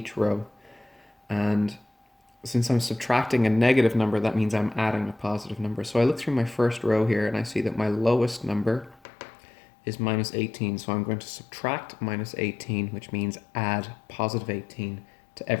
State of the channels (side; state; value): right; drops out; at 9.0 s